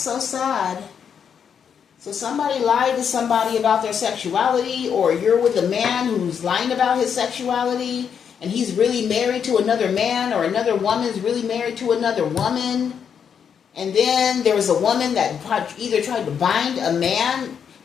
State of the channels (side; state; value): right; quieter; 7.5 dB